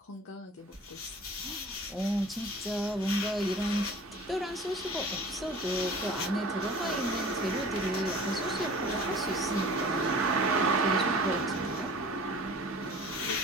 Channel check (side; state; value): both; normal; correlation 0.44